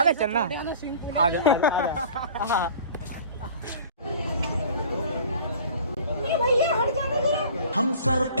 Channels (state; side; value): inverted; both; correlation -0.46